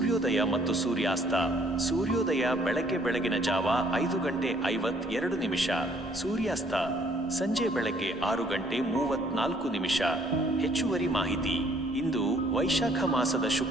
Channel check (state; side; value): normal; both; correlation 0.63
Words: ಮತ್ತು ಸೂರ್ಯಾಸ್ತ. ಸೂರ್ಯೋದಯ ಬೆಳಗಿನ ಜಾವ 5:52 ಸೂರ್ಯಾಸ್ತ ಸಂಜೆ 6:34 ಹೆಚ್ಚುವರಿ ಮಾಹಿತಿ. ಇಂದು ವೈಶಾಖ ಮಾಸದ